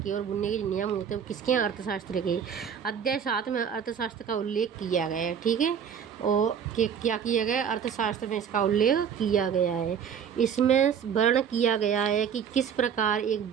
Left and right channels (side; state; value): left; quieter; 7.7 dB